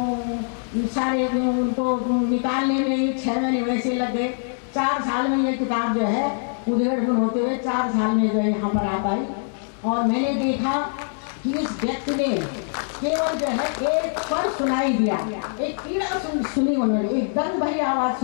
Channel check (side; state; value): right; silent; digital silence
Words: सारे उनको निकालने में ही 6 महीने वैसे लग गए। 4 साल में ये किताब जो है उधेड़-बुन होते हुए 4 साल में जो है यहाँ पर आ पाई। और मैंने देखा कि इस व्यक्ति ने केवल जो है एक स्वर सुनाई दिया, एक पीड़ा सुनी, उन्होंने एक दर्द भरी आवाज़